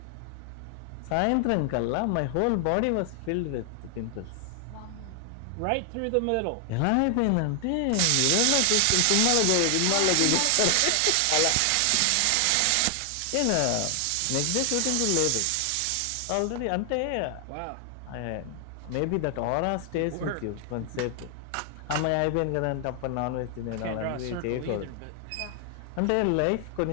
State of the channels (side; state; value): both; different; correlation 0.00